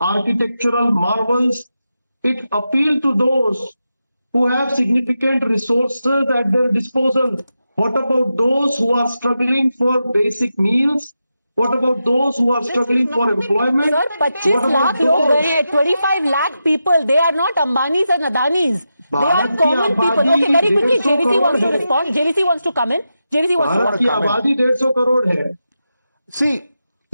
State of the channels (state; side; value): inverted; both; correlation -0.89